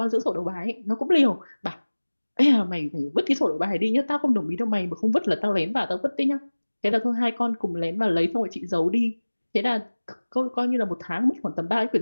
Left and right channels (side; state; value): both; inverted; correlation -1.00